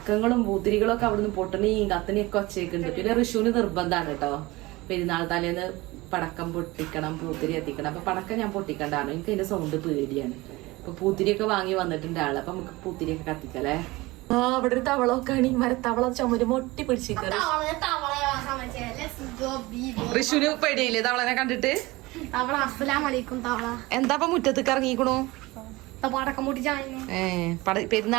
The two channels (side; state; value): left; quieter; 21.2 dB